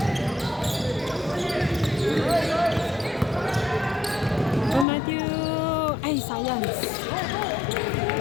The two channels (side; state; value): right; drops out; at 4.9 s